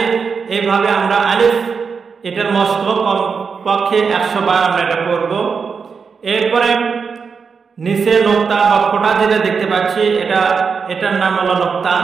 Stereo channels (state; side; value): quieter; left; 5.6 dB